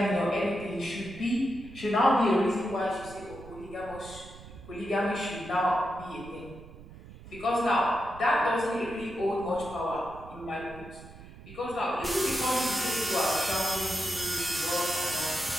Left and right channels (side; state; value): right; noise; rumble, 17 dB below the sound